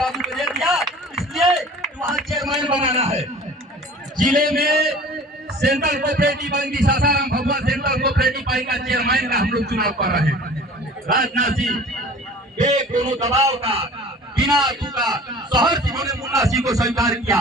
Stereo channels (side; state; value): both; normal; correlation 0.44